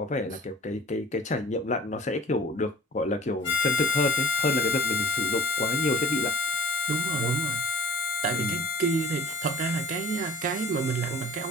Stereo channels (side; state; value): both; normal; correlation 0.44